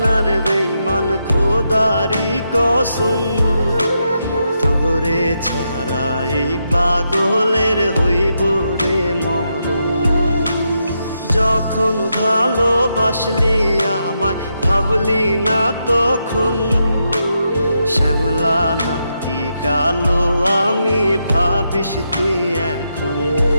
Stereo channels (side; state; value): both; inverted; correlation -0.83